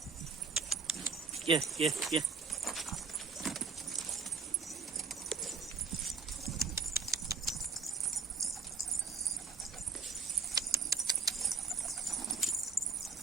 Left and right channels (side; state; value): left; quieter; 4.7 dB